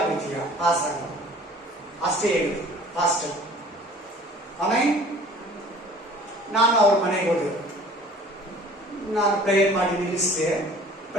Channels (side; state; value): both; normal; correlation 0.49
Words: ಪಾಸ್ ಆಗ ಅಷ್ಟೇ ಹೇಳಿದ್ರು ಪಾಸ್ಟರ್. ಆಮೇಲೆ ನಾನು ಅವ್ರ ಮನೆಗೆ ಹೋದೆ. ನಾನು ಪ್ರೇಯರ್ ಮಾಡಿ ನಿಲ್ಲಿಸಿದೆ.